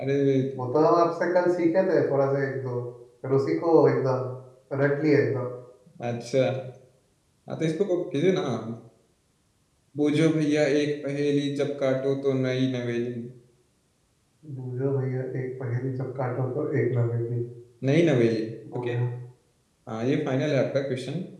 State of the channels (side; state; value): both; identical; correlation 1.00